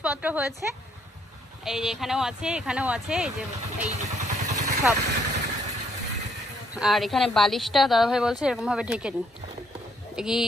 হয়েছে, এই যে এখানেও আছে, এখানেও আছে, এই যে এই সব। আর এখানে বালিশটা দাদাভাই বলছে এরকম ভাবে ঢেকে নিন,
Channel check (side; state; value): both; normal; correlation 0.70